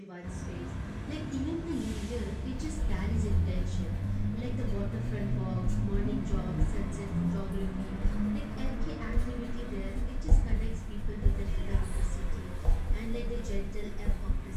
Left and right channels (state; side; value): identical; both; correlation 1.00